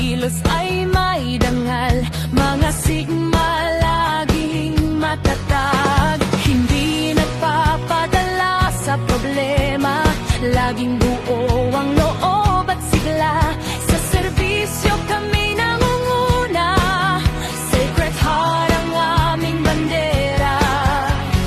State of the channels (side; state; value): both; identical; correlation 1.00